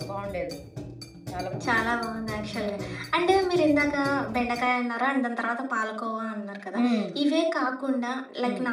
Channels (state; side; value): identical; both; correlation 1.00